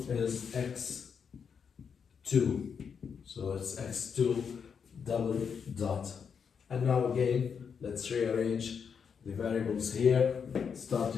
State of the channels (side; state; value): right; quieter; 6.6 dB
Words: is x2, so it's x2 double dot. And now again, let's rearrange the variables here,